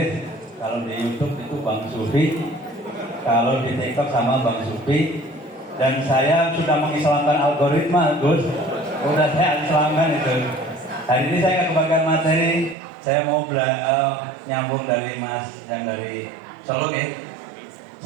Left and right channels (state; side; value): drops out; left; at 12.8 s